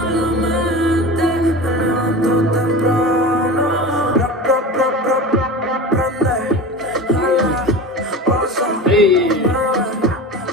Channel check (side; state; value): both; normal; correlation 0.31